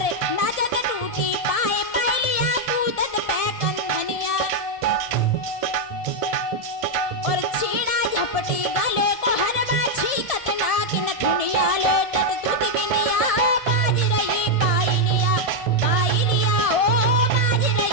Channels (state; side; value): late; right; 1.7 ms